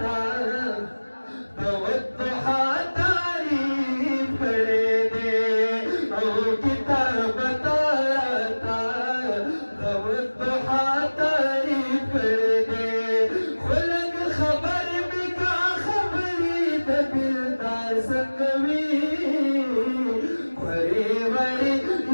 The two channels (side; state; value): both; inverted; correlation -1.00